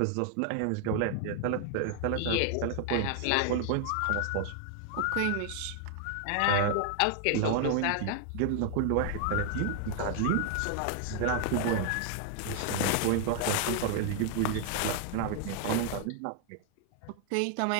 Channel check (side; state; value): both; different; correlation 0.00